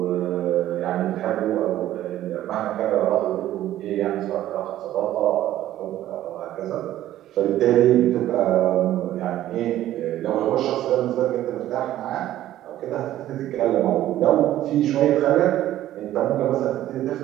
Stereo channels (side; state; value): left; quieter; 13.4 dB